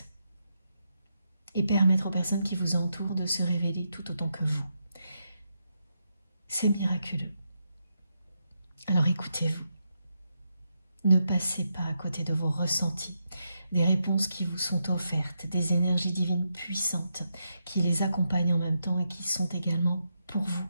et permettre aux personnes qui vous entourent de se révéler tout autant que vous. C'est miraculeux. Alors écoutez-vous. Ne passez pas à côté de vos ressentis, des réponses qui vous sont offertes, des énergies divines puissantes qui les accompagnent en même temps et qui sont également pour vous,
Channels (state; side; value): inverted; both; correlation -0.83